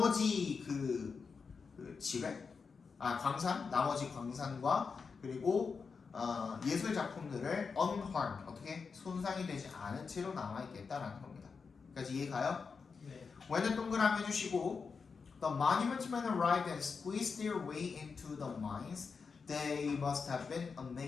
광산, 나머지 광산과 그리고 예술 작품들을 unharmed, 어떻게 손상이 되지 않은 채로 남아있겠다라는 겁니다. 까지 이해가요? 네. when은 동그라미 해주시고 the monument men arrived and squeezed their way into the mines. They must have been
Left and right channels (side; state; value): right; quieter; 5.2 dB